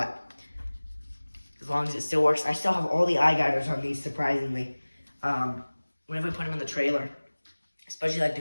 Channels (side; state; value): both; inverted; correlation -1.00